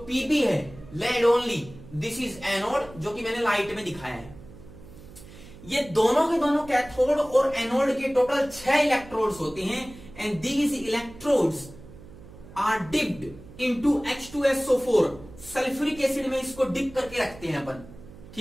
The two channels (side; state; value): right; noise; hum, 18 dB below the sound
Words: Pb है lead only, this is anode, जो कि मैंने लाइट में दिखाया है। ये दोनों के दोनों कैथोड और एनोड के टोटल 6 इलेक्ट्रोड्स होते हैं, and these electrodes are dipped into H2SO4। Sulphuric acid में इसको डिप करके रखते हैं अपन।